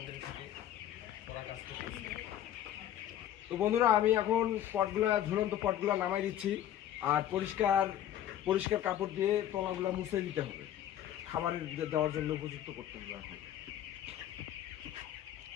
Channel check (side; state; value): right; quieter; 11.4 dB